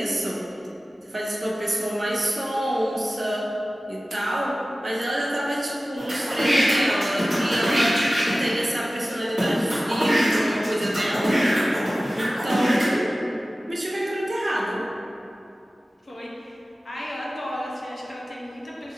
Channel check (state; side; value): normal; both; correlation 0.96